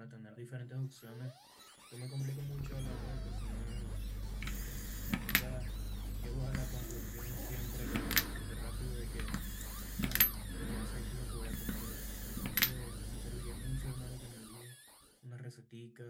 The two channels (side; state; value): both; identical; correlation 1.00